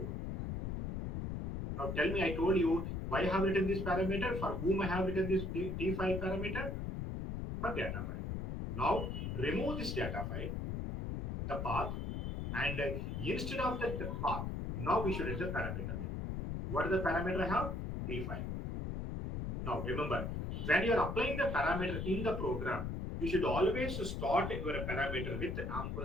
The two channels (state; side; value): noise; left; rumble, 3 dB below the sound